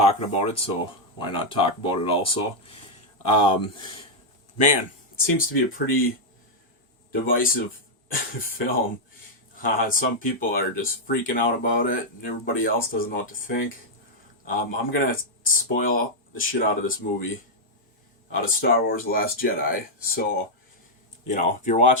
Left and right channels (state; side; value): normal; both; correlation -0.03